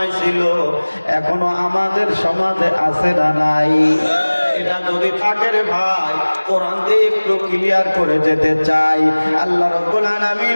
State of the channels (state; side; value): inverted; both; correlation -1.00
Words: ছিল, এখনো আমাদের সমাজে আছে না নাই? এটা যদি থাকে রে ভাই, কোরআন দিয়ে একটু ক্লিয়ার করে যেতে চাই। আল্লাহ রাব্বুল